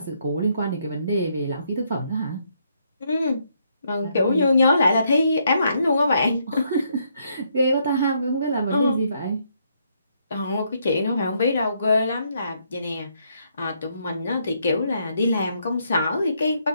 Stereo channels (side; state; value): both; inverted; correlation -0.73